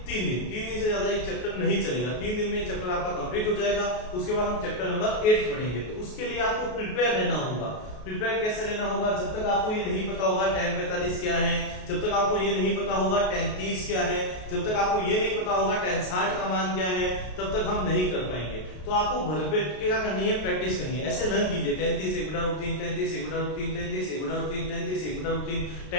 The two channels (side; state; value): right; late; 33 ms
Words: 3 दिन से ज्यादा ये चैप्टर नहीं चलेगा। 3 दिन में ये चैप्टर आपका कंप्लीट हो जाएगा। उसके बाद हम चैप्टर नंबर 8 पढ़ेंगे। तो उसके लिए आपको प्रिपेयर रहना होगा। प्रिपेयर कैसे रहना होगा, जब तक आपको ये नहीं पता होगा tan 45 क्या है, जब तक आपको ये नहीं पता होगा tan 30 क्या है, जब तक आपको ये नहीं पता होगा tan 60 का मान क्या है, तब तक हम नहीं कर पाएंगे। तो आपको भरपेट के क्या करनी है, प्रैक्टिस करनी है। ऐसे लर्न कीजिए, tan 30 1 बटा रूट 3, tan 30 1 बटा रूट 3, tan 30 1 बटा रूट 3, tan 30 1 बटा root 3,